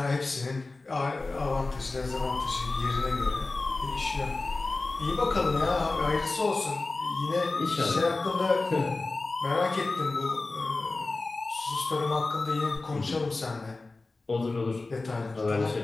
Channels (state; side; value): quieter; right; 3.4 dB